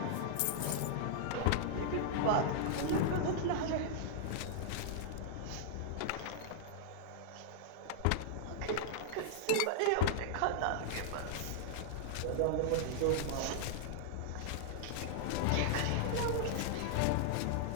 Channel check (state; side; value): different; both; correlation -0.01